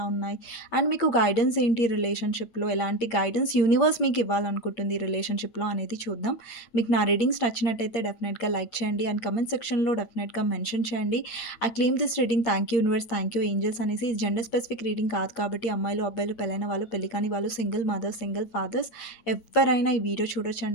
ఉన్నాయి, అండ్ మీకు గైడెన్స్ ఏంటి రిలేషన్‌షిప్‌లో, ఎలాంటి గైడెన్స్ యూనివర్స్ మీకు ఇవ్వాలనుకుంటుంది రిలేషన్‌షిప్‌లో అనేది చూద్దాం. మీకు నా రీడింగ్స్ నచ్చినట్టయితే డెఫినెట్‌గా లైక్ చేయండి అండ్ కామెంట్ సెక్షన్‌లో డెఫినెట్‌గా మెన్షన్ చేయండి. I claim this reading thank you universe, thank you angels అనేసి. ఇది జెండర్ స్పెసిఫిక్ రీడింగ్ కాదు కాబట్టి అమ్మాయిలు, అబ్బాయిలు, పెళ్ళైన వాళ్ళు, పెళ్లి కాని వాళ్ళు, సింగిల్ మదర్స్, సింగిల్ ఫాదర్స్ ఎవ్వరైనా ఈ వీడియో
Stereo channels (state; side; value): late; right; 8.6 ms